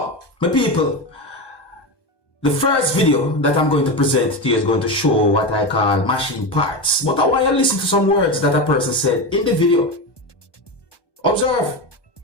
my people, the first video that I'm going to present to you is going to show what I call machine parts. But I want you to listen to some words that a person said in the video. Observe.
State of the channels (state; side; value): late; right; 1.2 ms